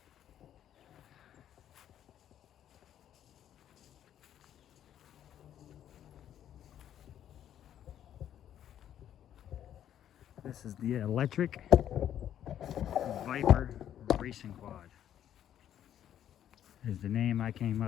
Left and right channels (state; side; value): quieter; right; 10.6 dB